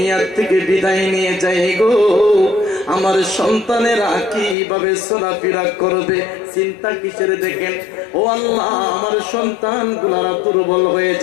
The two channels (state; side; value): drops out; right; at 4.5 s